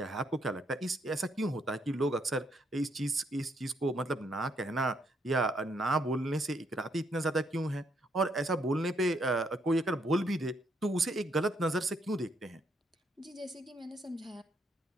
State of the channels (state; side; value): normal; both; correlation 0.73